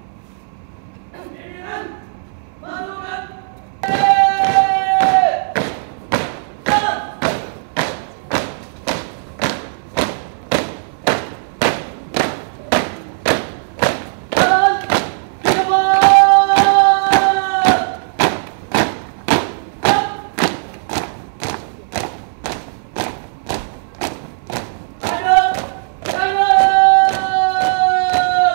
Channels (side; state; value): left; silent; 67 dB below the other